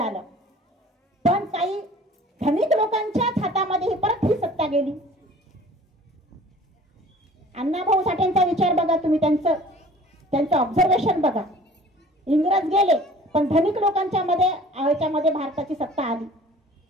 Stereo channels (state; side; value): normal; both; correlation 0.48